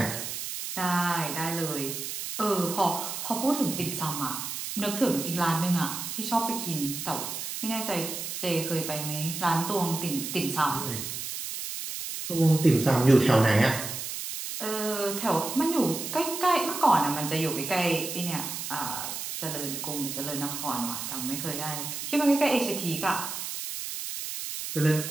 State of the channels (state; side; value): noise; right; hiss, 6 dB below the sound